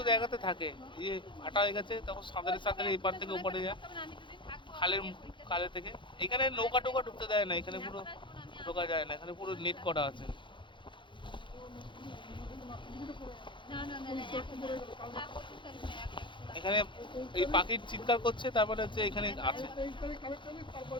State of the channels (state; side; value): late; right; 0.23 ms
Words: জায়গাতে থাকে। এই ফাটা হয়ে গেছে, তখন সাঁতারে এই পার থেকে ওপারে যায়, খালের থেকে। এখানে নৌকা টোকা ঢুকতে দেয় না, এখানে পুরো ঢোকা যায় না, এখানে পুরো নেট করা আছে। এখানে এই পাখির চিৎকার করছে, তারপরে হচ্ছে এখানে আছে।